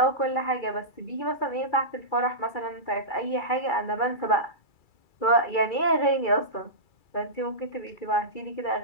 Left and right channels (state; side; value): late; right; 2.3 ms